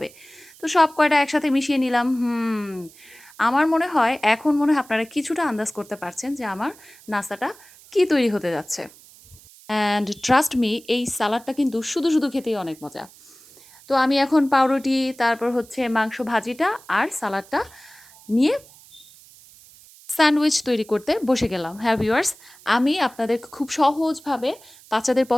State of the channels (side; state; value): right; noise; hiss, 23 dB below the sound